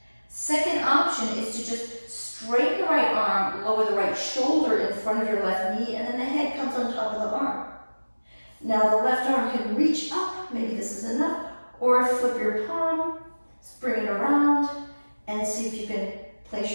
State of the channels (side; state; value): both; inverted; correlation -1.00